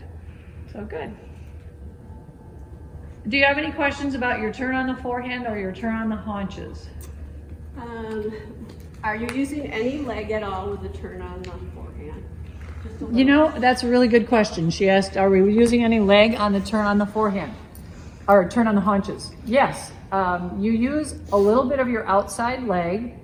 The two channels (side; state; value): both; identical; correlation 1.00